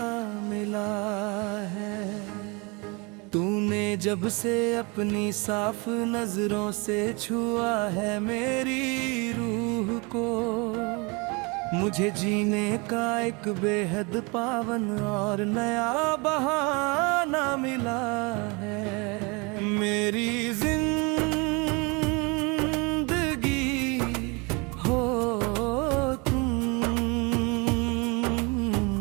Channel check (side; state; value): left; quieter; 29.1 dB